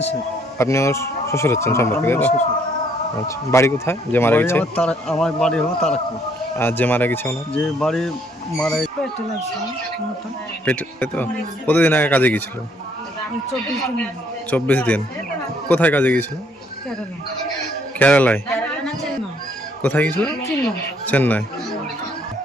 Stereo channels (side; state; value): both; normal; correlation 0.66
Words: শেখ। আপনি ওর শ্বশুর হচ্ছেন সম্পর্কে, তাই তো? আচ্ছা, বাড়ি কোথায় যে মারা গেছে? আমার বাড়ি হলো তারাকপুর। আর যে মারা গেছে ওনার? যে বাড়ি মারা পেটে, তাই তো? কতদিন আগে কাজে গিয়েছিল? 24 দিন। কোথায় কাজে গিয়েছিল? কেরালায়। কোথায় গিয়েছিল? চেন্নাই।